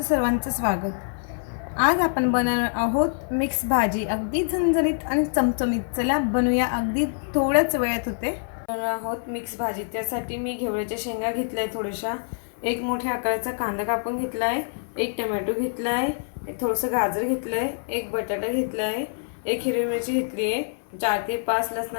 सर्वांचं स्वागत. आज आपण बनवणार आहोत मिक्स भाजी, अगदी झणझणीत आणि चमचमीत. चला बनवूया, अगदी थोड्याच वेळात होते. बनवणार आहोत मिक्स भाजी. त्यासाठी मी घेवड्याच्या शेंगा घेतल्या आहे थोड्याशा, एक मोठ्या आकाराचा कांदा कापून घेतला आहे, एक टमॅटो घेतला आहे, थोडंसं गाजर घेतलं आहे, एक बटाटा घेतला आहे, एक हिरवी मिरची घेतली आहे, 4 ते 5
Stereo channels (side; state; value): right; silent; 61 dB below the other